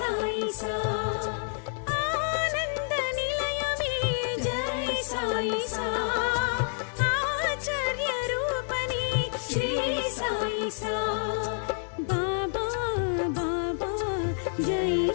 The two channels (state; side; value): silent; right; 57 dB below the other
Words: सा आनंद निलय में जय साई सा आचार्य रूपनी श्री साई सा बाबा बाबा जय